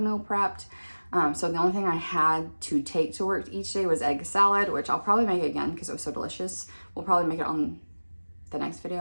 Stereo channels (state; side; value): inverted; both; correlation -1.00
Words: meal prepped. So the only thing I had to take to work each day was egg salad, which I'll probably make again because it was so delicious. We'll probably make it on the next